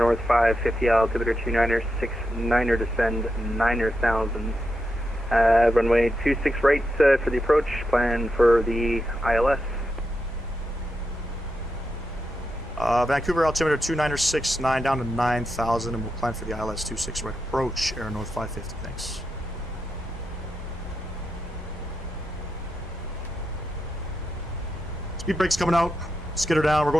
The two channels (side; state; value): both; normal; correlation 0.86